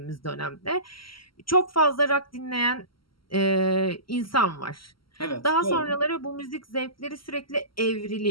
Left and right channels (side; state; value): right; late; 0.74 ms